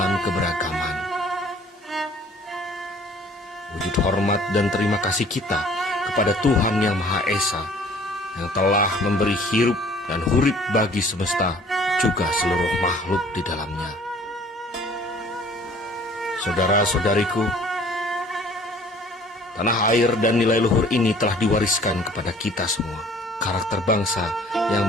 keberagaman. Wujud hormat dan terima kasih kita kepada Tuhan Yang Maha Esa yang telah memberi hirup dan hurip bagi semesta, juga seluruh makhluk di dalamnya. Saudara-saudariku, tanah air dan nilai luhur ini telah diwariskan kepada kita semua. Karakter bangsa yang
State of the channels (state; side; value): normal; both; correlation 0.53